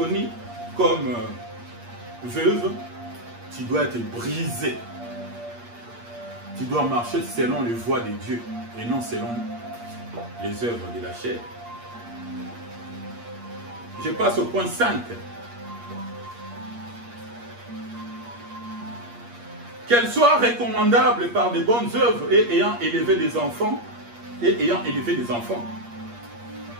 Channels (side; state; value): left; late; 8.5 ms